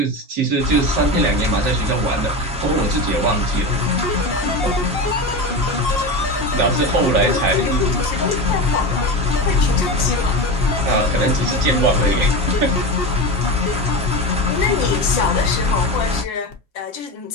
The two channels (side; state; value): both; normal; correlation 0.22